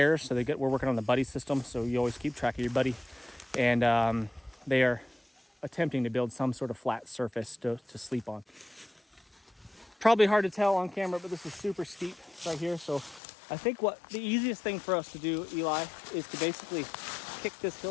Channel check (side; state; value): right; drops out; at 13.2 s